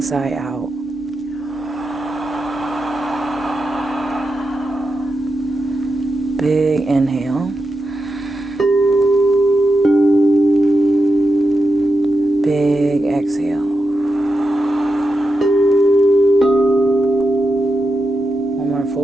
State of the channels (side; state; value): both; normal; correlation 0.88